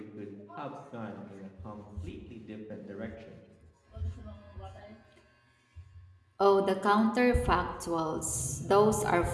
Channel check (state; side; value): identical; both; correlation 1.00